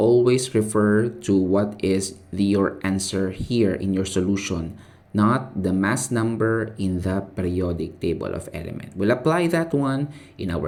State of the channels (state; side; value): identical; both; correlation 1.00